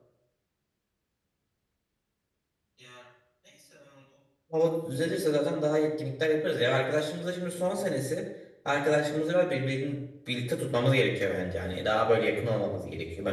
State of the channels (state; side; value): identical; both; correlation 1.00